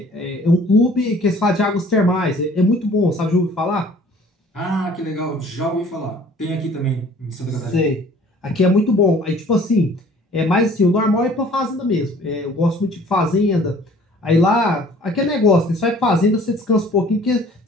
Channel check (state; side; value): normal; both; correlation 0.52